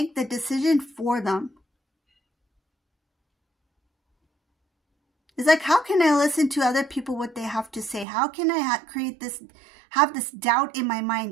the decision for them. It's like, how can I listen to other people, what they have to say? How can I have this doubt in my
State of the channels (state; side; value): drops out; left; at 8.1 s